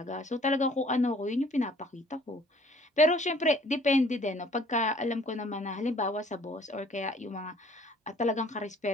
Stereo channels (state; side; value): normal; both; correlation 0.56